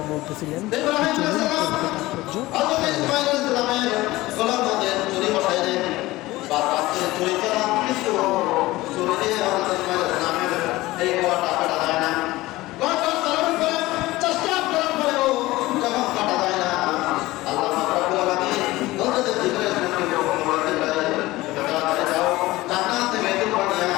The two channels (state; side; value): quieter; right; 18.7 dB